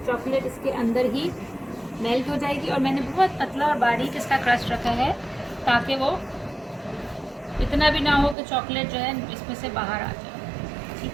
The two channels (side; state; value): left; drops out; at 8.3 s